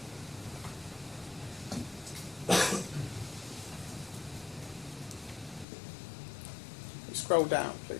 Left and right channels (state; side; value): drops out; right; at 5.7 s